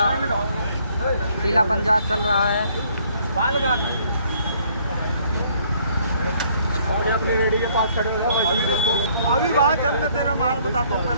पीला पंजा चल रहा है। अपनी रेडी के पास खड़े हो जाओ। अभी वहाँ चल मैं तेरा माल बताता हूँ,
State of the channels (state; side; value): inverted; both; correlation -0.63